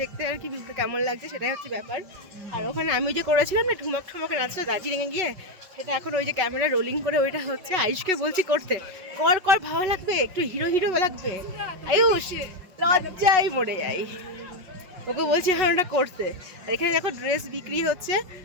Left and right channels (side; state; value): left; late; 5.4 ms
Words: দেখতে আর কি ভিউটা কেমন লাগছে সেটাই হচ্ছে ব্যাপার। আর ওখানে আমি যে করেছিলাম না ঠুমক ঠুমকে নাচটা দার্জিলিংয়ে গিয়ে, সেটা এখন ওই যে ক্যামেরা রোলিং করে ওইটা হচ্ছে আয়ুষকে বলছি করতে, কর কর ভালো লাগবে, একটু হিরো হিরো লাগবে। আয়ুষ লজ্জায় মরে যাই, ওকে বলছি এখন ওটা করতে। আর এখানে দেখো ড্রেস বিক্রি হচ্ছে,